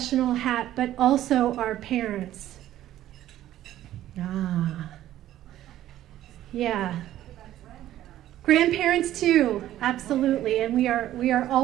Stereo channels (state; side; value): quieter; left; 13.2 dB